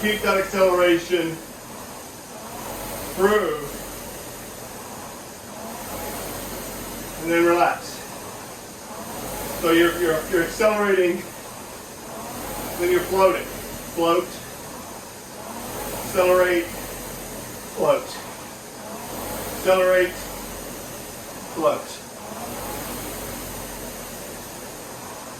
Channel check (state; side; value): identical; both; correlation 1.00